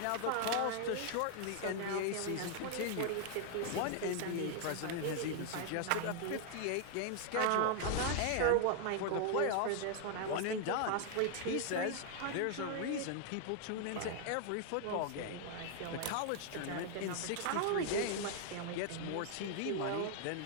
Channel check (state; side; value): different; both; correlation 0.00